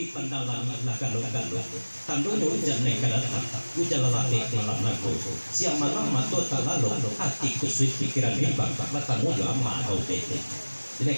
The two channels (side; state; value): both; inverted; correlation -1.00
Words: pandalan galong-galong tandono jane kadatan ujalalate malam nago siang malam mato talalong hati kusut pikiran bimbang matamu jo amma au tete ini